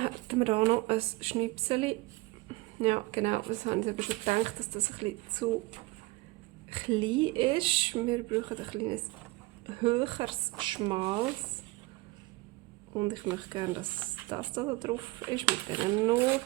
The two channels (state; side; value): quieter; left; 22.0 dB